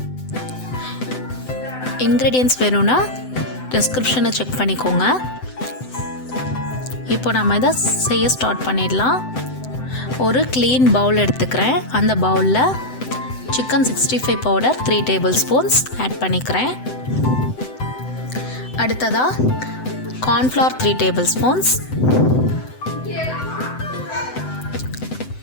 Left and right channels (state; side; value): late; right; 7.9 ms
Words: இன்க்ரீடியன்ட்ஸ் வேணும்னா டிஸ்கிரிப்ஷனை செக் பண்ணிக்கோங்க. இப்போ நம்ம இதை செய்ய ஸ்டார்ட் பண்ணிடலாம். ஒரு க்ளீன் பவுல் எடுத்துக்கிறேன். அந்த பவுலில் chicken 65 powder 3 table spoons add பண்ணிக்கிறேன். அடுத்ததாக கார்ன்ஃப்ளவர் 3 டேபிள் ஸ்பூன்ஸ்,